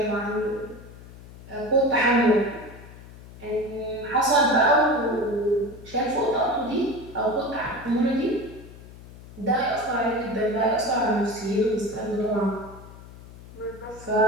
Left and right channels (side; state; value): left; noise; hum, 18 dB below the sound